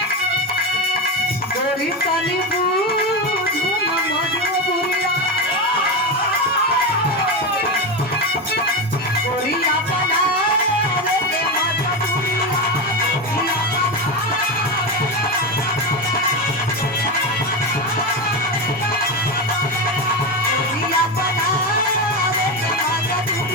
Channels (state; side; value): normal; both; correlation 0.15